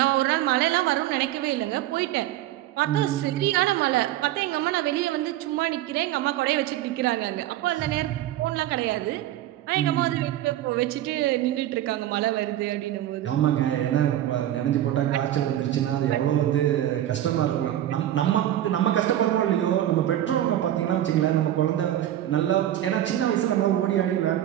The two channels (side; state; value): left; quieter; 12.9 dB